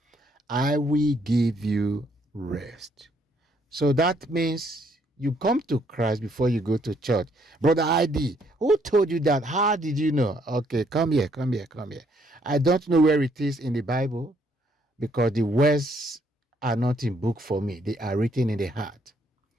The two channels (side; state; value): both; normal; correlation 0.69